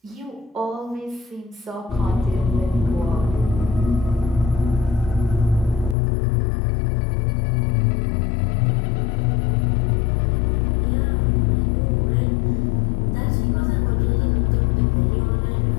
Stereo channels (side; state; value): right; drops out; at 6.0 s